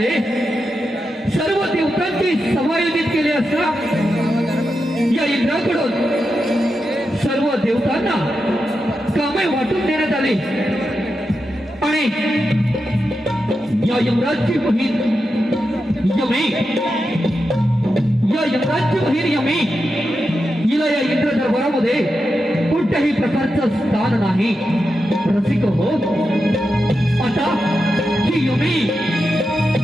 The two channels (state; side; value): normal; both; correlation 0.88